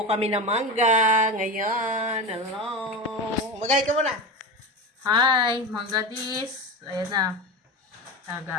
kami ng mangga ngayon. Hello. Magay ka muna. Hi, Mangga Dis. Ayan na.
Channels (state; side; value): normal; both; correlation 0.24